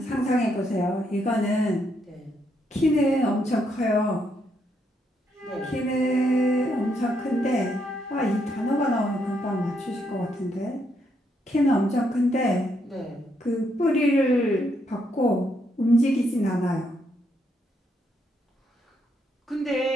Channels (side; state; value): both; normal; correlation 0.76